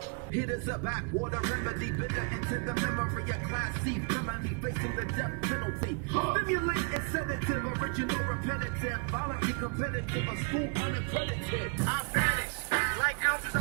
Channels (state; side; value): quieter; left; 34.7 dB